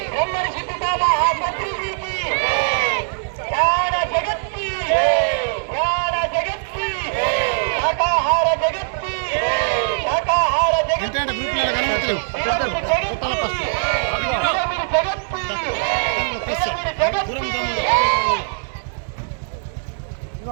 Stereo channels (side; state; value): left; silent; digital silence